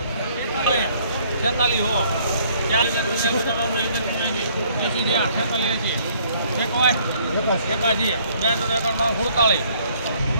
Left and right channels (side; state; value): both; inverted; correlation -0.61